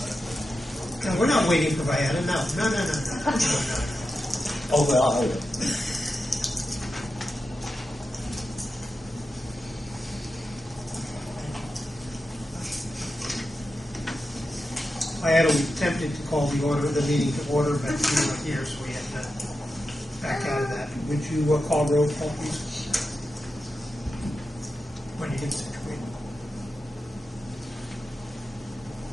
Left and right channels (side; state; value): both; normal; correlation 0.90